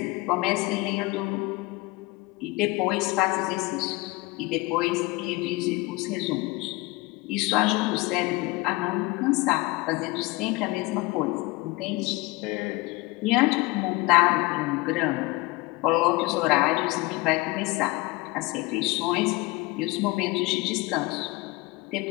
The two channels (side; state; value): right; quieter; 22.3 dB